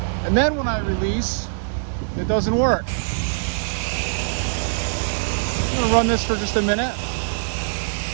And then when I release, it doesn't work. I'm gonna run this for just a minute.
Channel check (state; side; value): silent; left; digital silence